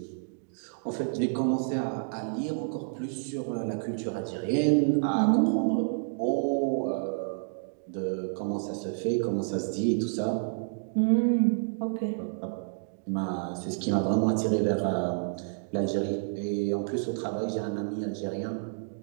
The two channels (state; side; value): silent; left; digital silence